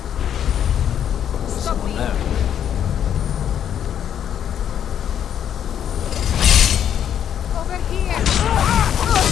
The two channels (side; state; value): right; quieter; 9.4 dB